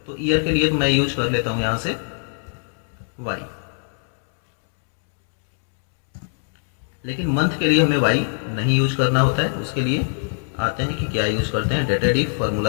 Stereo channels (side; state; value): right; silent; 64 dB below the other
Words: तो ईयर के लिए तो मैं यूज कर लेता हूँ यहाँ से y, लेकिन मंथ के लिए हमें y नहीं यूज करना होता है। उसके लिए आते हैं कि क्या यूज करते हैं, डेटेड इफ